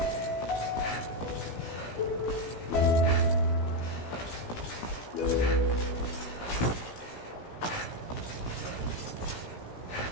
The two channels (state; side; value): late; right; 17 ms